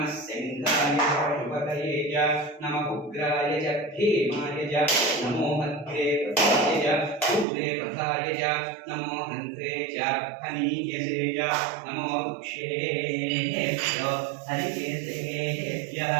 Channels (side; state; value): left; drops out; at 7.5 s